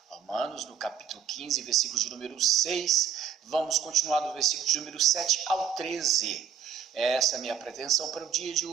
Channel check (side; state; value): left; quieter; 7.9 dB